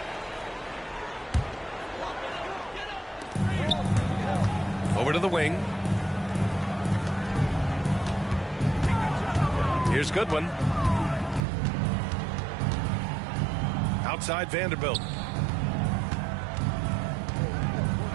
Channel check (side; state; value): left; drops out; at 11.4 s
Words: Over to the wing. Here's Goodwin. Outside Vanderbilt.